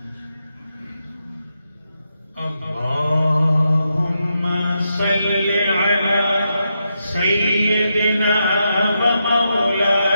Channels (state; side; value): inverted; both; correlation -0.84